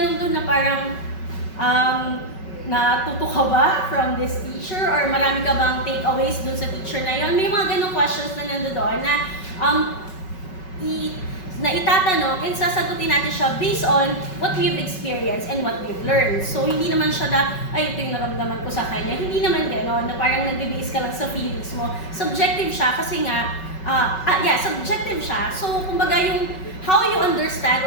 doon na parang natuto ka ba from this teacher or marami ka bang takeaways doon sa teacher na yon? May mga ganong questions na nandoon na itatanong and sasagutin natin siya based on what we've experienced and what we've learned. So, hindi naman siya na, ay, ito yung naramdaman ko sa kanya. Hindi naman gano'n, na parang nag-base ka lang sa feelings mo. Subjective siya kasi nga, subjective siya. So, kumbaga yung how you understand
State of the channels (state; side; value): late; right; 5.3 ms